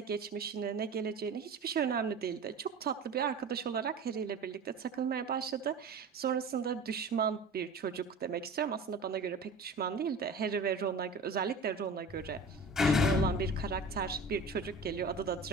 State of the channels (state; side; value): quieter; left; 3.3 dB